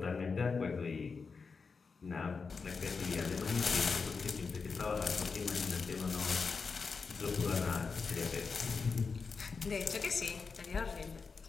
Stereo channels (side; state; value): right; quieter; 4.9 dB